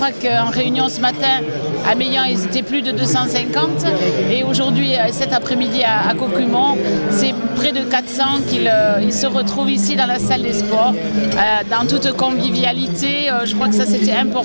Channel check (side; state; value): both; inverted; correlation -1.00